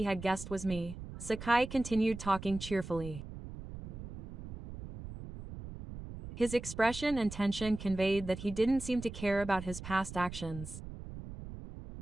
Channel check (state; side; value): noise; right; rumble, 11 dB below the sound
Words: had guessed was me, Sakai continued talking cheerfully. His expression and tension conveyed that he didn't seem to care about his past actions.